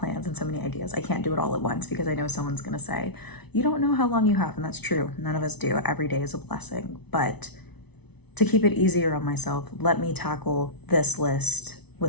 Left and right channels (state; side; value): late; right; 0.99 ms